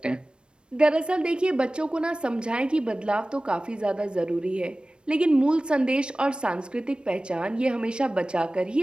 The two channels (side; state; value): left; late; 0.055 ms